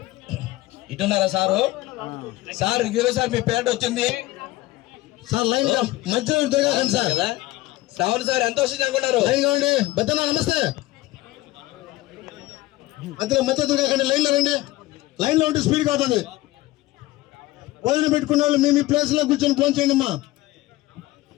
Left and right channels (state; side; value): quieter; right; 18.2 dB